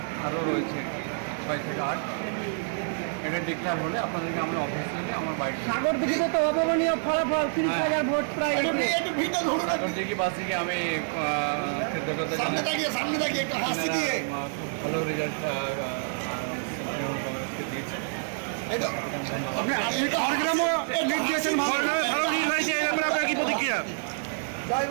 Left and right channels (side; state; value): left; silent; 57 dB below the other